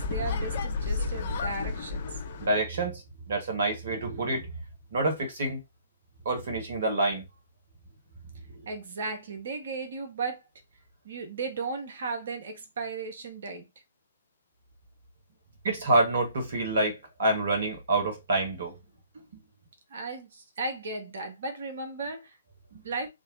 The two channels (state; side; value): inverted; both; correlation -0.60